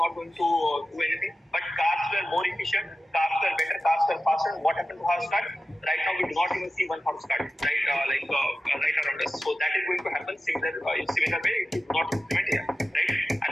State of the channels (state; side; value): normal; both; correlation 0.93